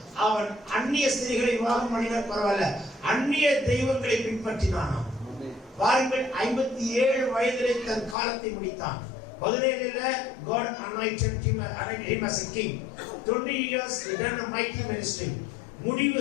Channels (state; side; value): drops out; right; at 8.2 s